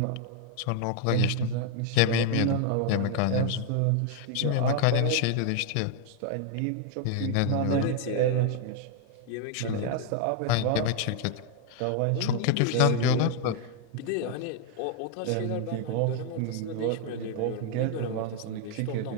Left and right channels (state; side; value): different; both; correlation 0.00